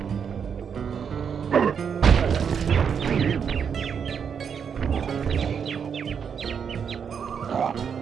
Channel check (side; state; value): left; quieter; 7.1 dB